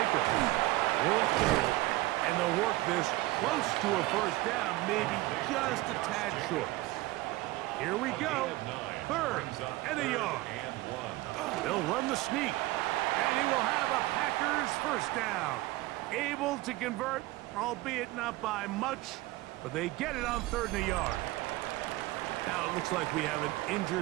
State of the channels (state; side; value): quieter; left; 19.0 dB